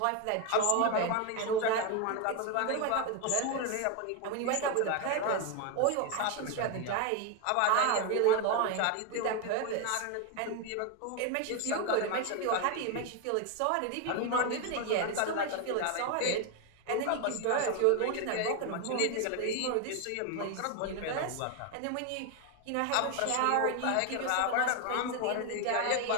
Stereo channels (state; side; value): different; both; correlation 0.01